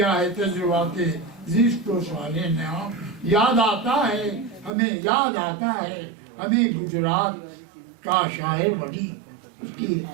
ہے تجربات زیست و صالح نے عام یاد آتا ہے ہمیں گجرات کا شاعر وڈی اس کی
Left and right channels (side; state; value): left; drops out; at 4.7 s